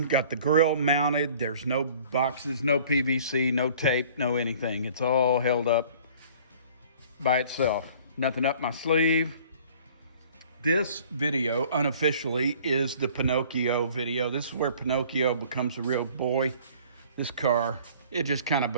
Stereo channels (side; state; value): both; inverted; correlation -0.51